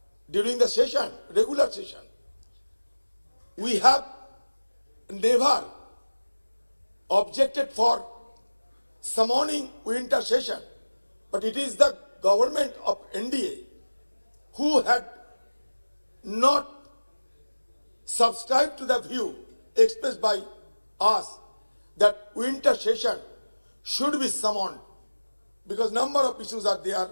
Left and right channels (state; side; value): inverted; both; correlation -1.00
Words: during the session, regular session. We have never objected for summoning winter session, but it is the government of NDA who had not subscribed to the view expressed by us that winter session should be summoned because number of issues are there